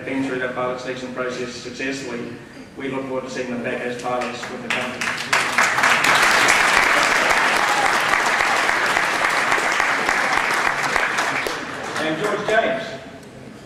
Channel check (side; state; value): both; identical; correlation 1.00